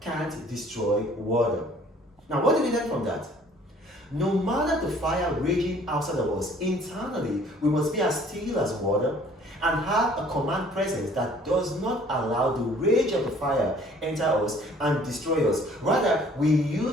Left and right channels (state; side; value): normal; both; correlation 0.55